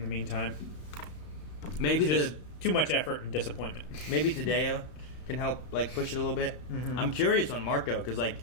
meantime. Maybe too much effort and disappointment. Maybe Tadeo can help, like, push it a little bit. Mm-hmm. I'm curious on Marco, because, like,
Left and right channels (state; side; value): late; right; 31 ms